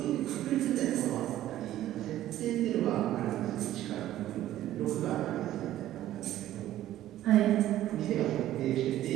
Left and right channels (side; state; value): left; quieter; 13.4 dB